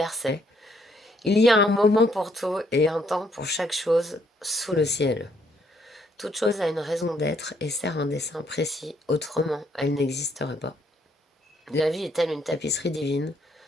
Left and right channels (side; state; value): both; normal; correlation 0.70